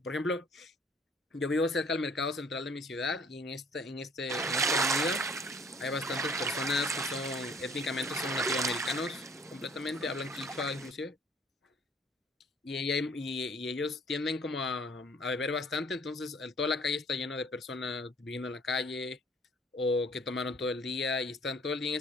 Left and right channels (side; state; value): both; normal; correlation 0.56